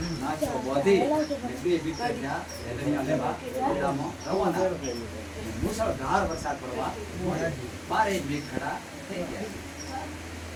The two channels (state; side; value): identical; both; correlation 1.00